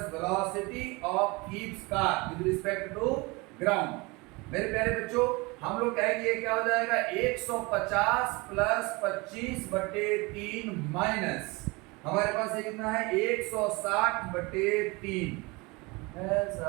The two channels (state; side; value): quieter; left; 25.5 dB